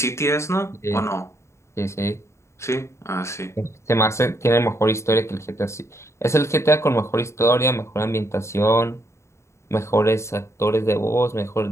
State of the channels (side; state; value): right; late; 0.14 ms